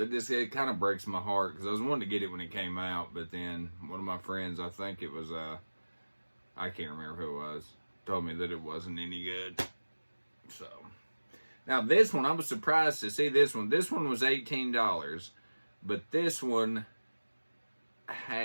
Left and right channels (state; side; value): inverted; both; correlation -1.00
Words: kind of breaks my heart because I was wanting to get it when it came out, but then one of my friends, I think it was I can't remember who it was, told me that it wasn't any good. So now this one, I was surprised to see this one. This one was $18, but this one